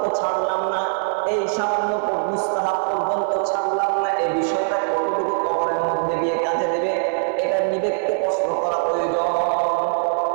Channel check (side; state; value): left; silent; 55 dB below the other